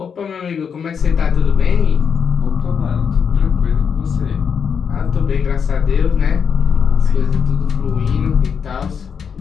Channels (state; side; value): quieter; right; 6.8 dB